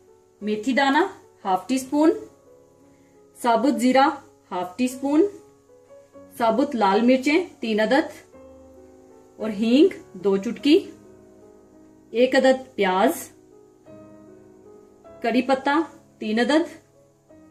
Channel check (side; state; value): both; identical; correlation 1.00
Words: मेथी दाना हाफ टी स्पून, साबुत जीरा हाफ टी स्पून, साबुत लाल मिर्चें 3 अदद और हींग 2 चुटकी, 1 अदद प्याज, करी पत्ता 3 अदद